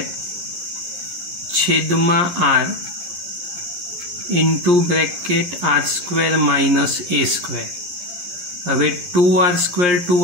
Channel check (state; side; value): late; left; 11 ms